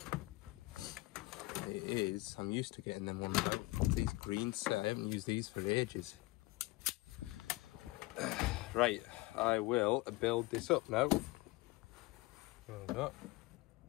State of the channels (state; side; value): quieter; right; 21.2 dB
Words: It is, I'm used to getting them ones out. These green set, I haven't used these for ages. Right, I will build this up now. There we go.